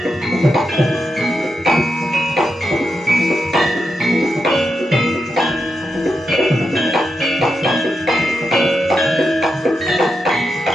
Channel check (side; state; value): both; normal; correlation 0.86